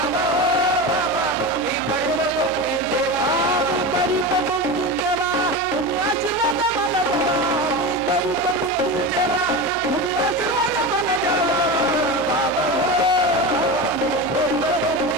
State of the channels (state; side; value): noise; left; hum, 20 dB below the sound